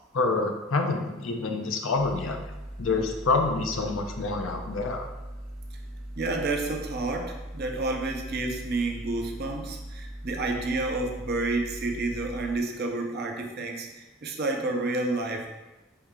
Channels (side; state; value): both; normal; correlation 0.39